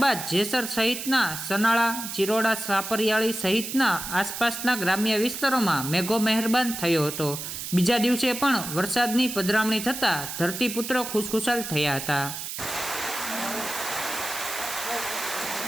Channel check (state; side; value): noise; right; hiss, 7 dB below the sound